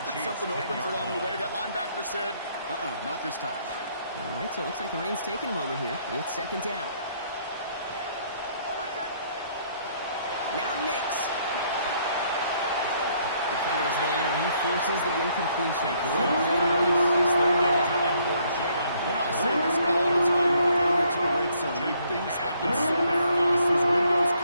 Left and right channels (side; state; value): both; inverted; correlation -0.67